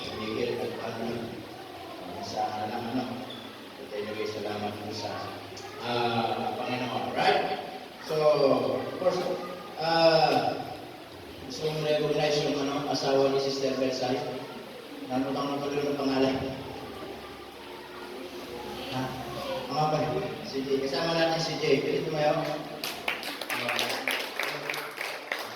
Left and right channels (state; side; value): identical; both; correlation 1.00